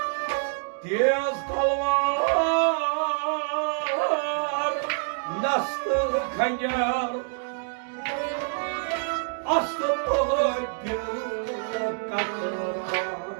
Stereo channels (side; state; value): left; silent; 57 dB below the other